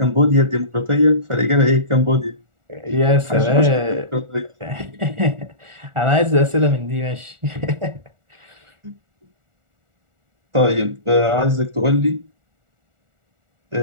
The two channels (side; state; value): left; late; 1.4 ms